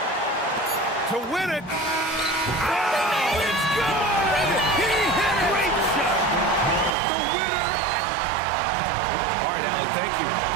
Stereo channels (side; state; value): left; drops out; at 7.0 s